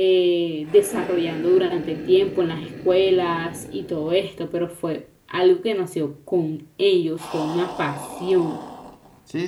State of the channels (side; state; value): both; identical; correlation 1.00